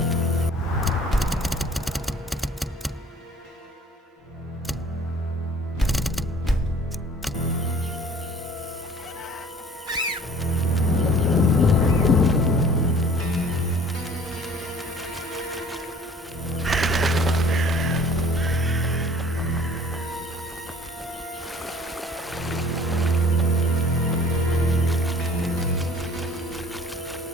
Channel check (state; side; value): normal; both; correlation 0.51